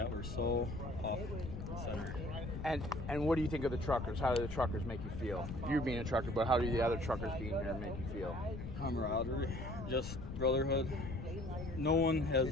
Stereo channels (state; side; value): noise; left; rumble, 7 dB below the sound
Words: were so off center. And what do you think of the truckers? How do the truckers make you feel? You being a trucker, but how do the other truckers being here make you feel? Camaraderie, just brotherhood. No one has.